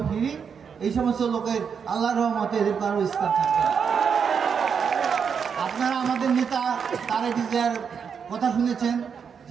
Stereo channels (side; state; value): left; quieter; 6.7 dB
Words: ফিরি, এই সমস্ত লোকের আল্লাহর রহমতে এদের কারো স্থান থাকবে না। আপনারা আমাদের নেতা তারেক জিয়ার কথা শুনেছেন